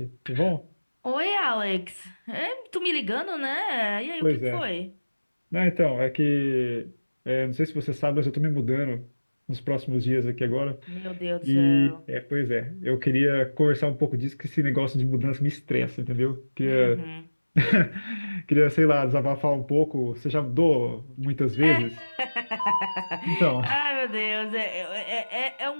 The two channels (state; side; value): inverted; both; correlation -1.00